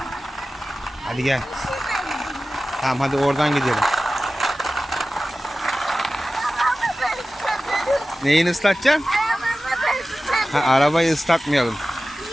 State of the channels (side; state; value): both; normal; correlation 0.95